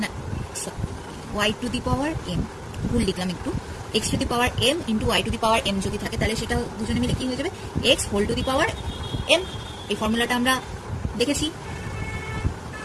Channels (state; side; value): identical; both; correlation 1.00